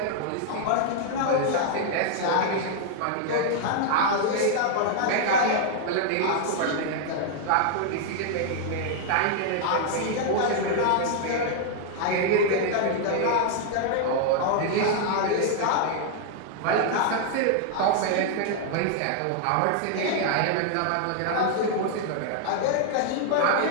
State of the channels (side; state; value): both; different; correlation 0.00